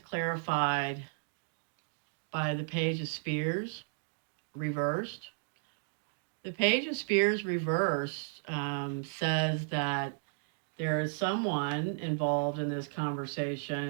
by the Page of Spears reversed. The Page of Spears reversed says that there is someone involved in this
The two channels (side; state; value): left; silent; digital silence